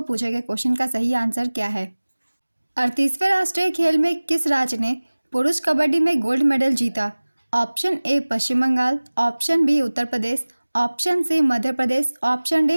पूछे गए क्वेश्चन का सही आंसर क्या है। 38वें राष्ट्रीय खेल में किस राज्य ने पुरुष कबड्डी में गोल्ड मेडल जीता? Option A Paschim Bangal, option B Uttar Pradesh, option C Madhya Pradesh, option D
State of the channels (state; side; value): inverted; both; correlation -1.00